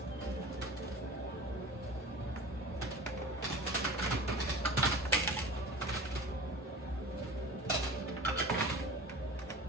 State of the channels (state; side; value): normal; both; correlation 0.36